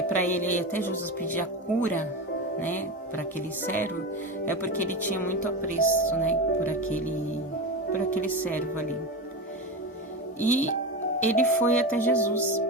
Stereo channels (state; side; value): normal; both; correlation 0.21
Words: para ele até Jesus pedir a cura, né, para aquele servo, é porque ele tinha muito apreço, né, por aquele servo ali. E ele foi até Jesus,